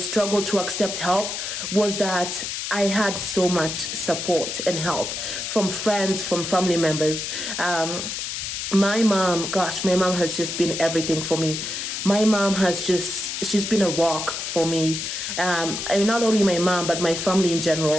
to accept help, was that I had so much support and help from friends, from family members. My mom has just been everything for me. My mom she's been a rock for me. Not only my mom, but my family in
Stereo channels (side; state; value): left; noise; hiss, 4 dB below the sound